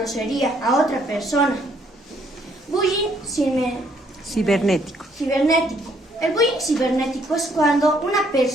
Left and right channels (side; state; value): both; normal; correlation 0.68